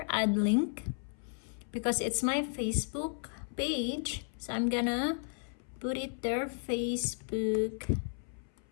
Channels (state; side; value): silent; right; 55 dB below the other